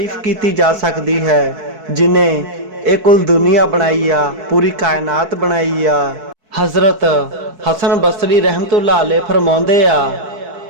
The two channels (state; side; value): late; left; 4.6 ms